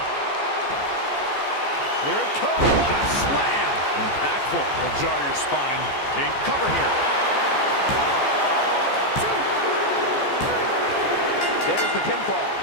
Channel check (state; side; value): late; right; 14 ms